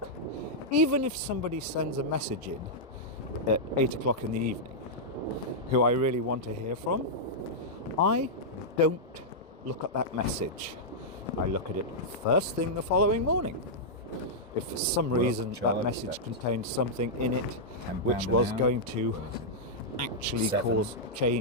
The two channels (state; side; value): normal; both; correlation -0.08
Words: Even if somebody sends a message in at 8 o'clock in the evening, who I really want to hear from, I don't look at that message. I look at it first thing the following morning. If for some reason that charge, message that contained something in it £10 which an was hour. going to actually 7. cause